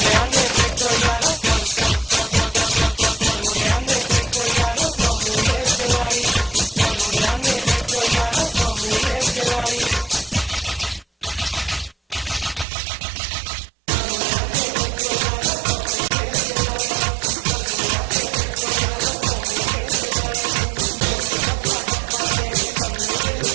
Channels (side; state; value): left; drops out; at 12.7 s